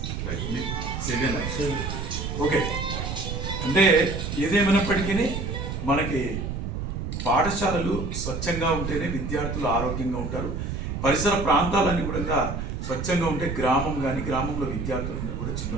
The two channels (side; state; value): right; noise; rumble, 4 dB below the sound